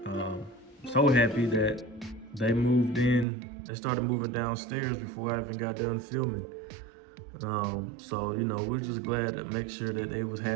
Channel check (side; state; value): left; drops out; at 3.2 s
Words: so happy that they moved in. They started moving downstairs before I even got done filming. So you know, we're just glad to make sure that they was